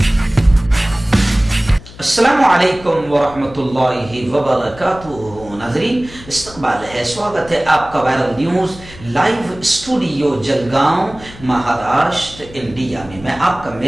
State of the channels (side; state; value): left; noise; hum, 18 dB below the sound